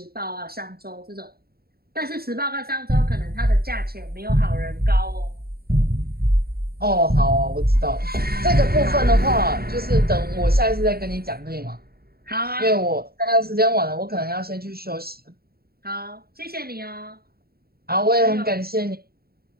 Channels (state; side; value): late; left; 0.45 ms